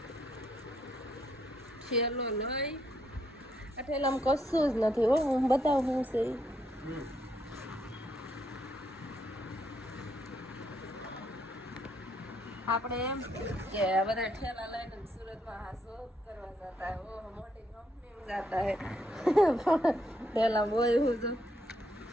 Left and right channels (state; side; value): normal; both; correlation 0.75